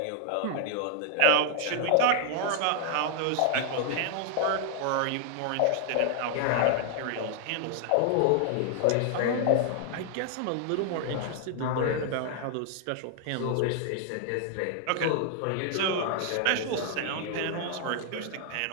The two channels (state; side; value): different; both; correlation 0.00